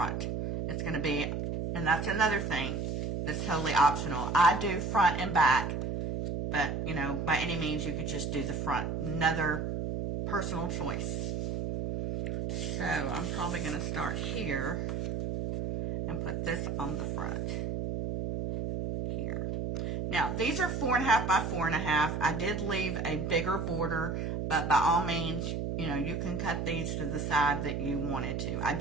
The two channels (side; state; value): right; noise; hum, 2 dB below the sound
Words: It's going to be, and that's another thing that's totally optional. I do front and back, but, you know, by any means, you could just do the front. Another personal choice. So, I'm probably going to start here and put this on the front. Here. Now, these are 4.5 by 4.5. I did leave a bigger border, but by all means, you know, you can cut these to the side that you wanted to. I